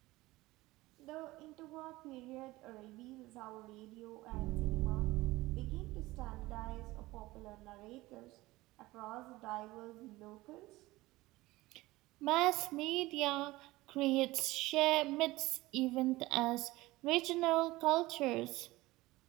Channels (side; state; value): left; quieter; 19.3 dB